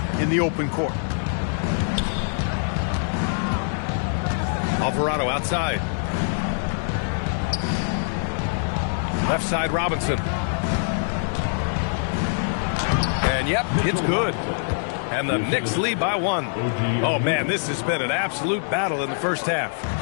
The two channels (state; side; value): silent; right; digital silence